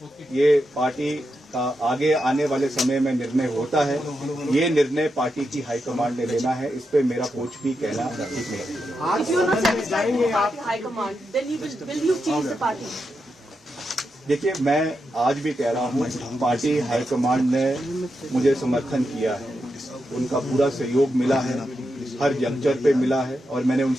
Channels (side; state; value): both; normal; correlation 0.86